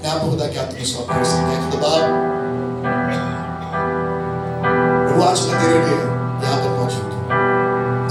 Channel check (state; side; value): identical; both; correlation 1.00